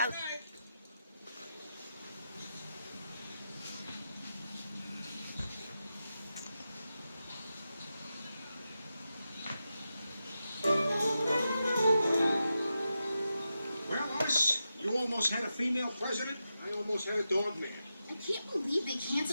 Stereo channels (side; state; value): both; inverted; correlation -0.89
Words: tonight. Well, Lois, you almost had a female president. I almost had a dog man. I can't believe they